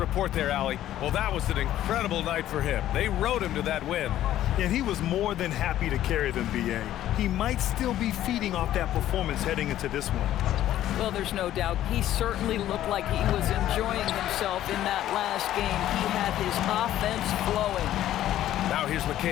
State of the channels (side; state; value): right; quieter; 12.8 dB